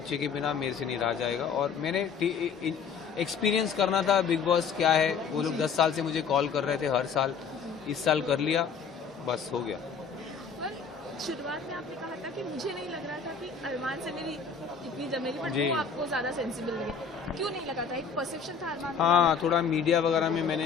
के बिना मेरे से नहीं रहा जाएगा। और मैंने एक्सपीरियंस करना था बिग बॉस क्या है। वो लोग 10 साल से मुझे कॉल कर रहे थे हर साल, इस साल कर लिया, बस हो गया। शुरुआत में आपने कहा था कि मुझे नहीं लग रहा था कि अरमान से मेरी इतनी जमेगी, बट वो आपको ज़्यादा सेंसिबल लगे। क्यों नहीं लगा था? एक परसेप्शन था अरमान? हाँ, थोड़ा मीडिया वगैरह में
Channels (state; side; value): quieter; right; 6.0 dB